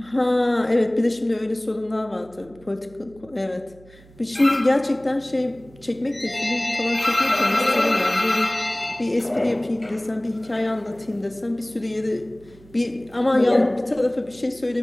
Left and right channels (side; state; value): right; noise; hum, 24 dB below the sound